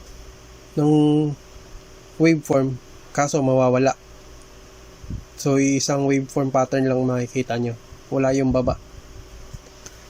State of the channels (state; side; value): identical; both; correlation 1.00